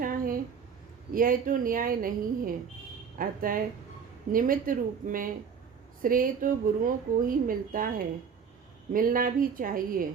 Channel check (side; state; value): left; quieter; 6.6 dB